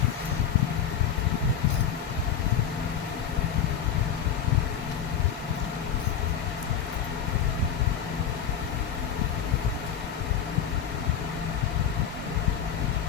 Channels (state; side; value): quieter; right; 8.1 dB